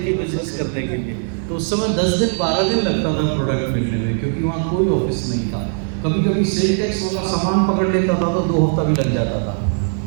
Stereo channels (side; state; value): left; silent; digital silence